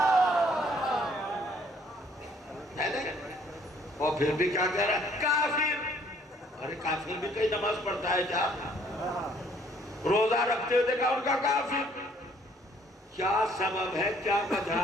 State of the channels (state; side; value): normal; both; correlation 0.62